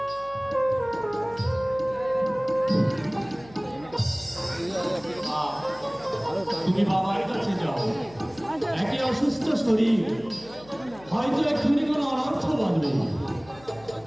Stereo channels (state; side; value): noise; left; hum, 22 dB below the sound